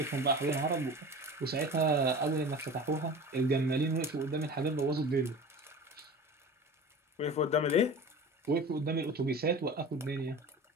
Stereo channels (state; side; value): normal; both; correlation 0.35